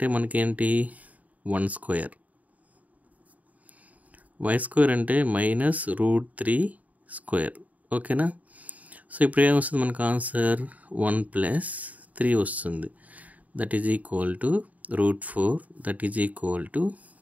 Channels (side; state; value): left; late; 0.073 ms